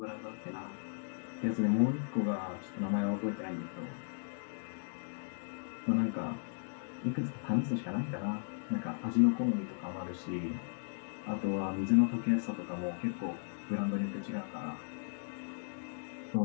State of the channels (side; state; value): right; silent; digital silence